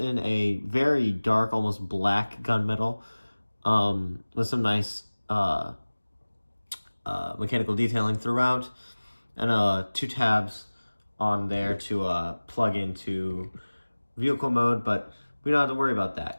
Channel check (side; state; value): both; inverted; correlation -1.00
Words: a very dark, almost black gunmetal, with some nice mechanical detailing throughout, and two tabs on there to plug into vehicle mode, but we don't have to worry about